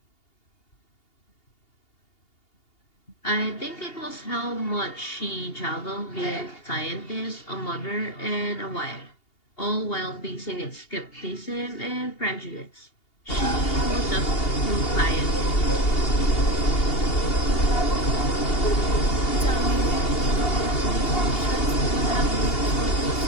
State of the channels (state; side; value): late; right; 2.8 ms